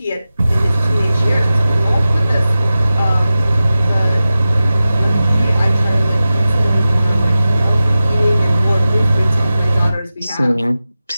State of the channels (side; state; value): both; inverted; correlation -0.94